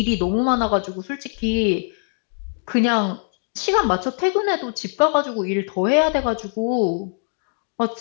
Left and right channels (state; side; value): silent; right; digital silence